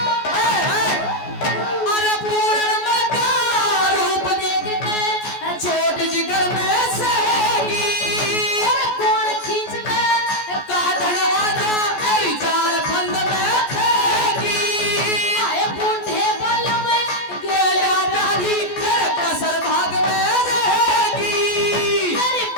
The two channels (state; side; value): late; right; 14 ms